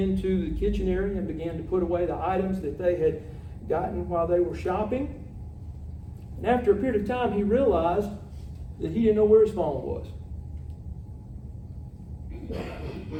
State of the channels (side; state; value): both; identical; correlation 1.00